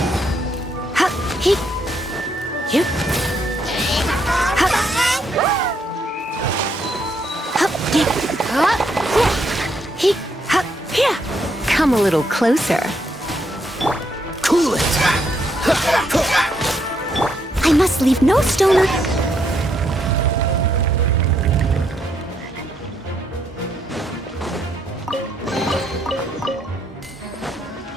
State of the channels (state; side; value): normal; both; correlation 0.75